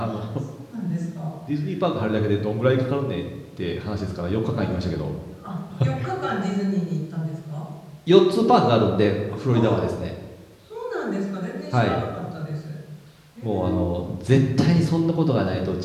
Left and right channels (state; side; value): identical; both; correlation 1.00